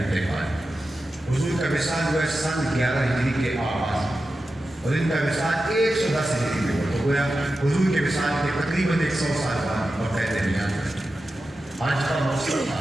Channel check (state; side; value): normal; both; correlation 0.92